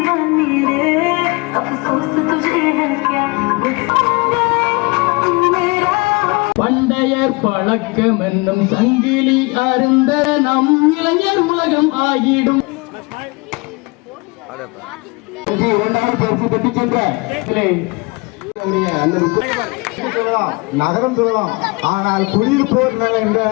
பண்டையர் பழக்கம் என்னும் சங்கிலி அருந்த நம் இளைஞர் உலகம் ஆகிடும். இரண்டாவது பரிசு பெற்று சென்ற நகரம் சொல்லலாம். ஆனால் குடியிருப்போர் நல என்ற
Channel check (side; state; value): right; quieter; 26.8 dB